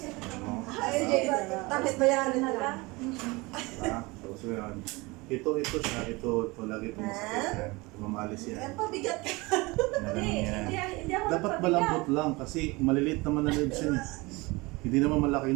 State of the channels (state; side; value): quieter; left; 24.1 dB